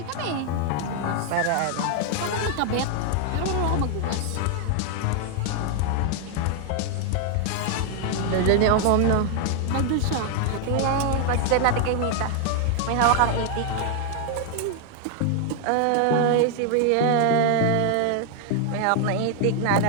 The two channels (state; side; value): different; both; correlation 0.00